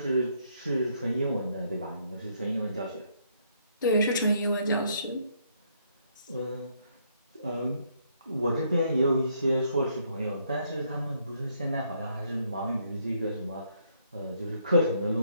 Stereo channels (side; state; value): both; inverted; correlation -0.71